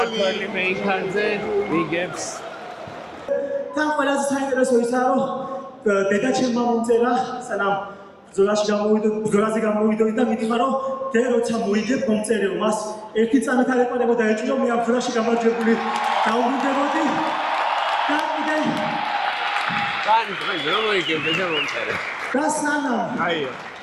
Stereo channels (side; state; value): both; identical; correlation 1.00